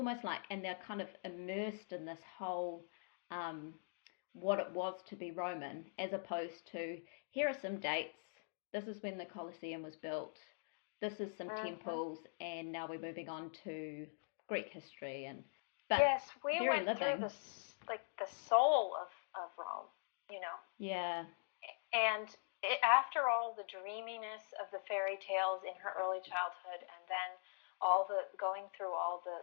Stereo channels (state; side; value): silent; right; digital silence